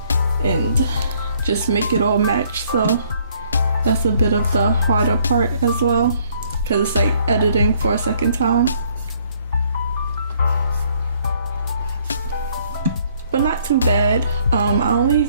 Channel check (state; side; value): inverted; both; correlation -0.64